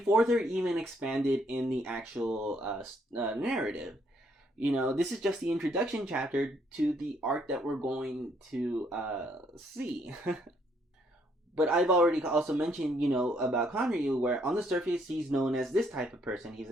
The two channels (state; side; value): normal; both; correlation 0.69